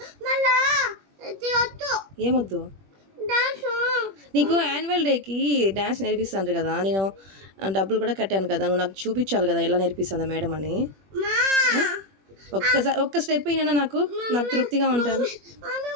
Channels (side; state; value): left; late; 21 ms